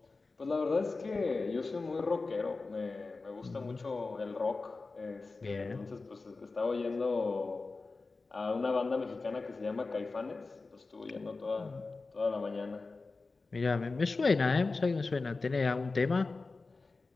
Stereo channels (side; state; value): right; quieter; 3.8 dB